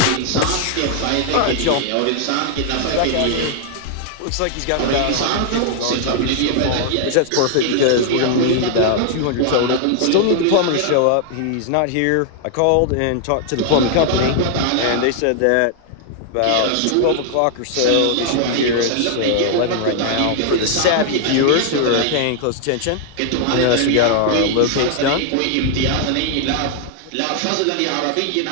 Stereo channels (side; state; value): both; different; correlation 0.00